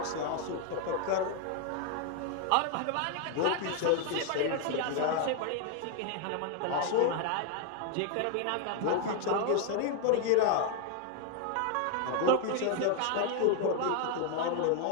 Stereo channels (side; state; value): both; different; correlation 0.00